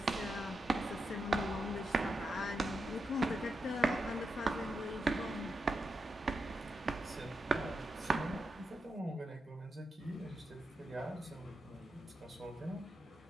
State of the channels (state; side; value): normal; both; correlation 0.87